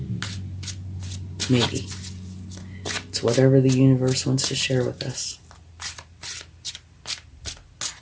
Maybe. It's whatever the universe wants to share with us.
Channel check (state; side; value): identical; both; correlation 1.00